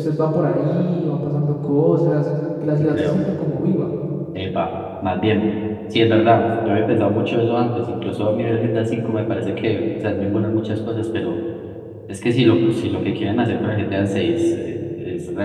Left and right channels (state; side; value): identical; both; correlation 1.00